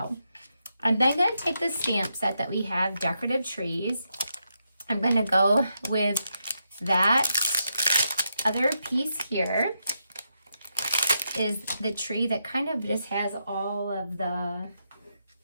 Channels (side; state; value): both; inverted; correlation -0.83